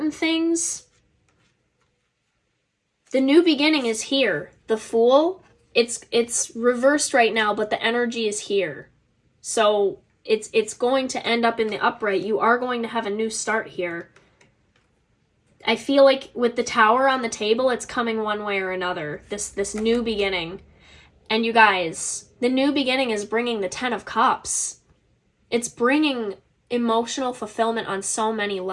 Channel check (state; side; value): identical; both; correlation 1.00